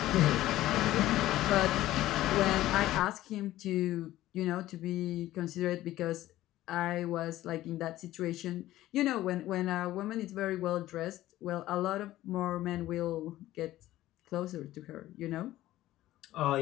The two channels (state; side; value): quieter; right; 15.1 dB